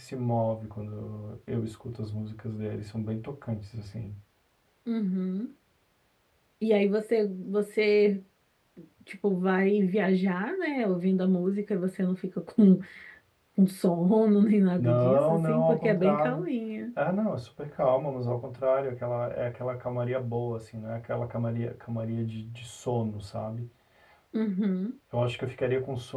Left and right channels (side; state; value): both; identical; correlation 1.00